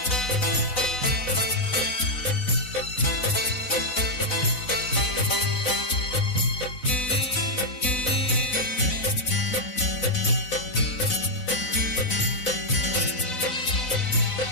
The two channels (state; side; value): late; right; 4.0 ms